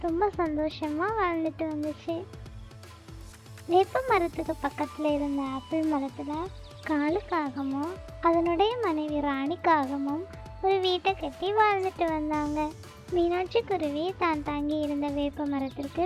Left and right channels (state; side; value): identical; both; correlation 1.00